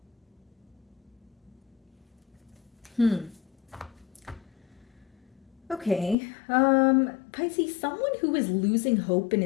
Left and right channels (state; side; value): drops out; right; at 6.2 s